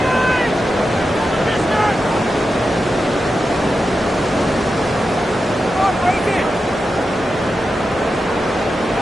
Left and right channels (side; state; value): both; normal; correlation 0.90